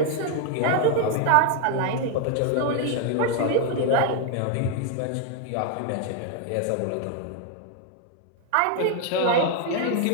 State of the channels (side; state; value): both; different; correlation 0.00